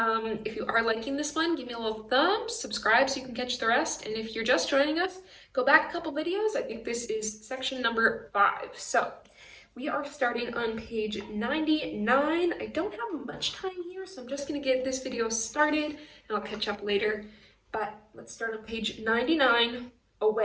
If you are liking this one, give me a little thumb, subscribe so you can catch the rest. And if you're just joining us, go back a couple videos. I think this is section number 5. So we are starting on page 99. I don't have much time here, so I'm just going to get this video started and I'll catch up later. But let's start on page 99,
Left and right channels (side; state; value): both; identical; correlation 1.00